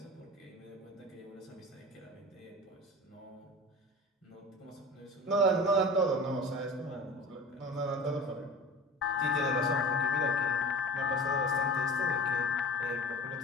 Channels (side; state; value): both; normal; correlation 0.37